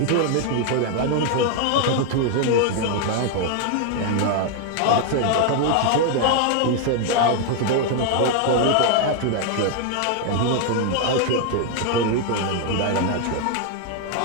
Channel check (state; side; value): different; both; correlation 0.00